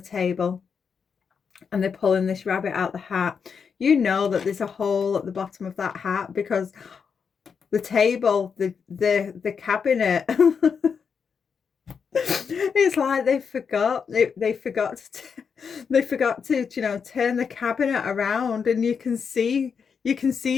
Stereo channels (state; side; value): quieter; right; 6.3 dB